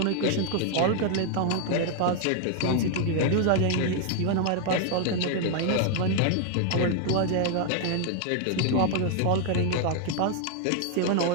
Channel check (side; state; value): both; different; correlation 0.00